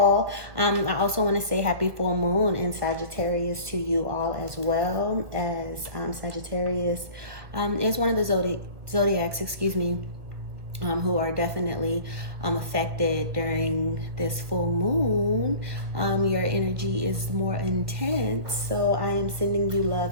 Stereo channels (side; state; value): left; late; 1.7 ms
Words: I also want to say happy full moon in Sagittarius to you all, as well as Sagittarius is one of the zodiacs, who are definitely affected during this full moon. Your energy is more intense, so I am sending you love